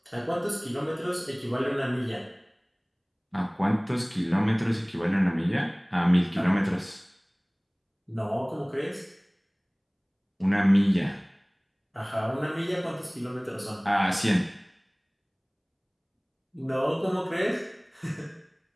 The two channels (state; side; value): identical; both; correlation 1.00